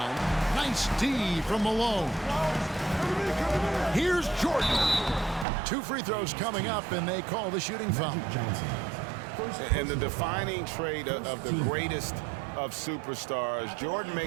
Nice D from Malone. Here's Jordan. 2 free throws coming up, and they call the shooting foul. And the defining trait of the greatest of superstars, Jordan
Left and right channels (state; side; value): drops out; left; at 5.5 s